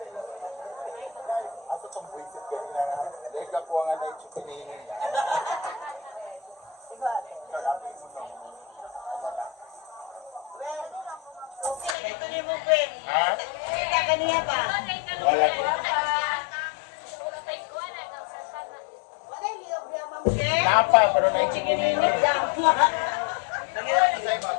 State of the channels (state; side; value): drops out; right; at 12.0 s